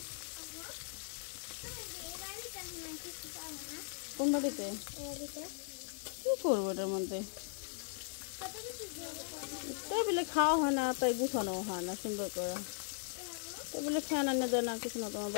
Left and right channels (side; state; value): right; silent; digital silence